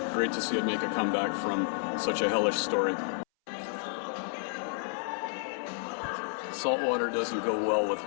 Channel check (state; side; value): silent; right; 57 dB below the other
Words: Great to see it make a comeback from such a hellish story. Salt water doesn't go well with